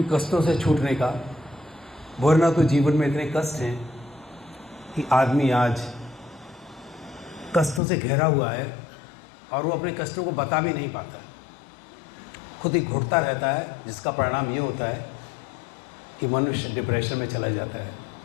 कष्टों से छूटने का। वरना तो जीवन में इतने कष्ट हैं कि आदमी आज कष्टों से घिरा हुआ है और वो अपने कष्टों को बता भी नहीं पाता, खुद ही घुटता रहता है, जिसका परिणाम ये होता है कि मनुष्य डिप्रेशन में चला जाता है।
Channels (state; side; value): drops out; right; at 7.8 s